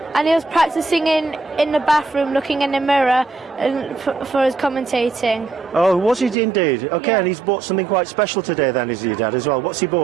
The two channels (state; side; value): drops out; left; at 6.4 s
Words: and he was practicing in the bathroom, looking in the mirror and for his commentating. Oh, was he indeed? Okay, Yeah. and he's bought something quite special today then, is your dad as well? What's he